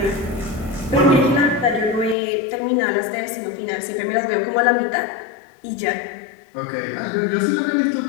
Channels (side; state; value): right; drops out; at 2.1 s